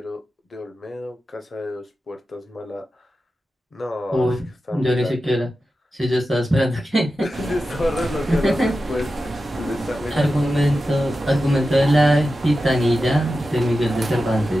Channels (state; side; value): normal; both; correlation 0.92